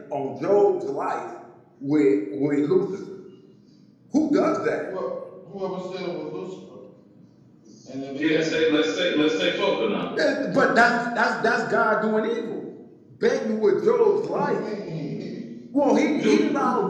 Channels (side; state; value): both; identical; correlation 1.00